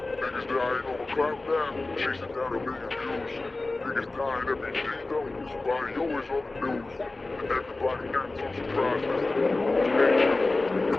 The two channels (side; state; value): right; quieter; 3.2 dB